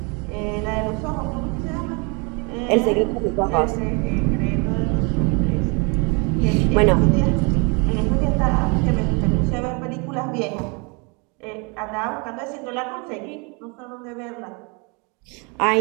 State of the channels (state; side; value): quieter; left; 32.0 dB